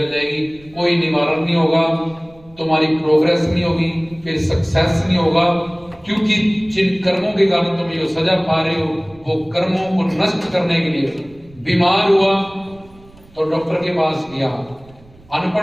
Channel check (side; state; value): right; noise; rumble, 26 dB below the sound